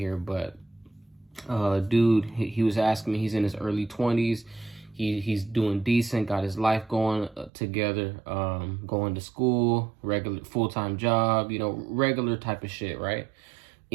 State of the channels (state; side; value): drops out; left; at 7.5 s